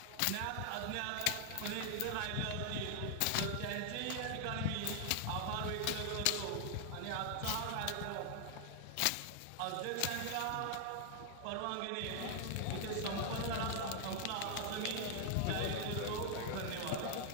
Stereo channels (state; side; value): different; both; correlation 0.00